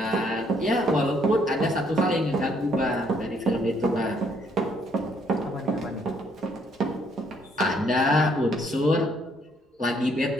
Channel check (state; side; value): normal; both; correlation 0.68